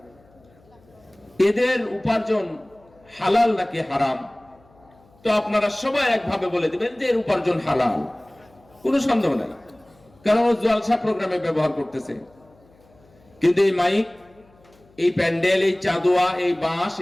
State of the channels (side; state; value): left; noise; hum, 30 dB below the sound